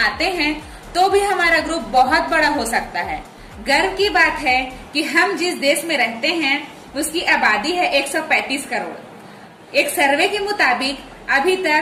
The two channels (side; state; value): both; identical; correlation 1.00